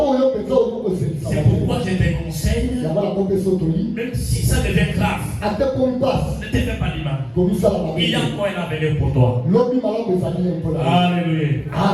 C'est pourquoi je te conseille, même si ça devient grave, ne te fais pas du mal. Il y a encore un avenir pour toi. Alléluia.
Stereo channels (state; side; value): identical; both; correlation 1.00